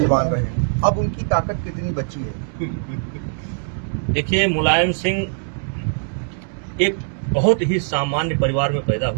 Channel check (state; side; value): silent; left; digital silence